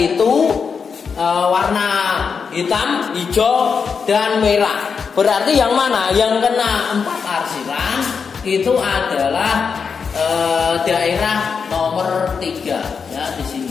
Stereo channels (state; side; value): quieter; right; 5.9 dB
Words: warna hitam, hijau, dan merah. Berarti yang mana? Yang kena 4 arsiran itu adalah daerah nomor 3, ya, di